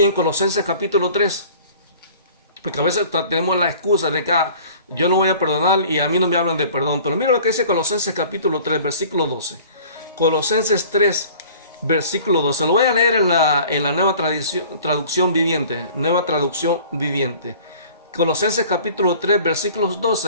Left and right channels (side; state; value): both; inverted; correlation -0.48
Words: en Colosenses capítulo 3, porque a veces tenemos la excusa de que yo no voy a perdonar y a mí no me hablan de perdón. Pero mira lo que dice Colosenses capítulo 3, versículo 12. Colosenses 3, versículo 12. Lo voy a leer en la nueva traducción viviente. Nueva traducción viviente. Colosenses capítulo 3, versículos